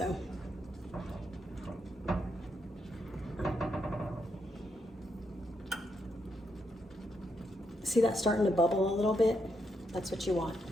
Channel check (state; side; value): normal; both; correlation 0.79